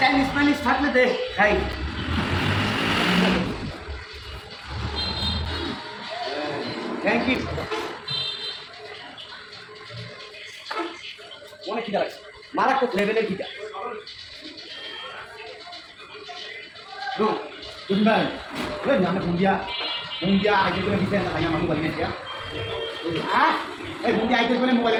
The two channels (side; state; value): both; identical; correlation 1.00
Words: মাইনিজ থাকলে দে খাই থ্যাংক ইউ অনেক খিদা লাগছে মারাত্মক লেভেলের খিদা Đúng đây, rất nhắm là cùng dia ai chơi cái video này mà mobile này kia. Cùng dia ai chơi cái mobile